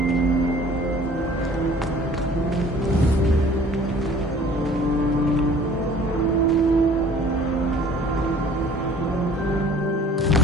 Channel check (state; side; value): normal; both; correlation 0.49